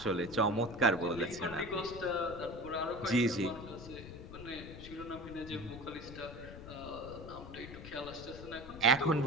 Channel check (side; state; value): left; noise; rumble, 13 dB below the sound